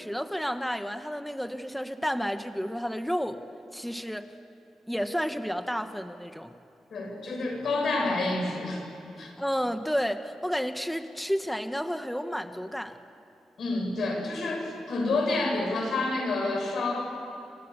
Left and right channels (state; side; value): normal; both; correlation 0.91